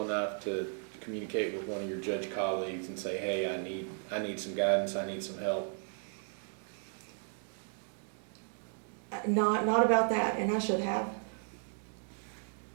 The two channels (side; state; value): left; silent; 54 dB below the other